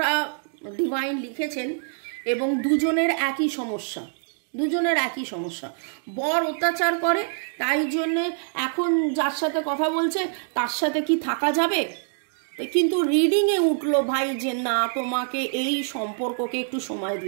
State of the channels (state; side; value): silent; left; digital silence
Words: ডিভাইন লিখেছেন এবং দুজনের একই সমস্যা। বর অত্যাচার করে, তাই জন্যে এখন যার সাথে কথা বলছে তার সাথে কি থাকা যাবে, কিন্তু রিডিংয়ে উঠলো ভাই যে না তোমাকে এই সম্পর্ককে একটু সময়